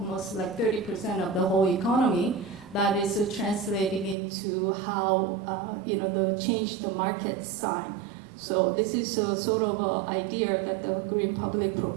like 30% of the whole economy, that is translating into how, the change the market sign. So this is a sort of an idea that the green public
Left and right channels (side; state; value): left; drops out; at 4.2 s